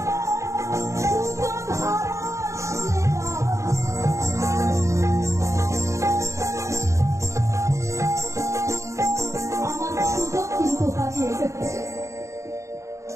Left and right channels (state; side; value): late; left; 0.14 ms